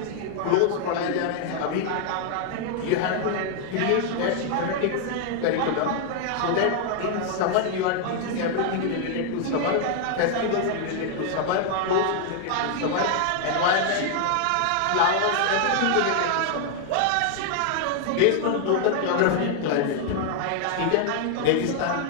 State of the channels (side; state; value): both; different; correlation 0.00